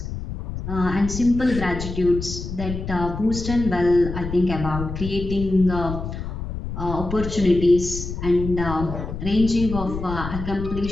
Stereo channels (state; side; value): noise; left; rumble, 7 dB below the sound